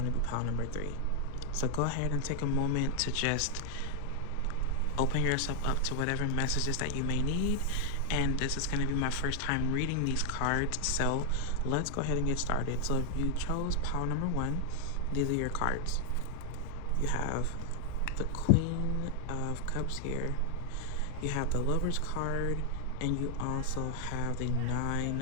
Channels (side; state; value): both; different; correlation 0.00